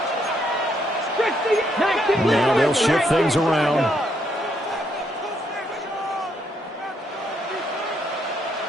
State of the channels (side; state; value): both; normal; correlation 0.74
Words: Now they'll shift things around.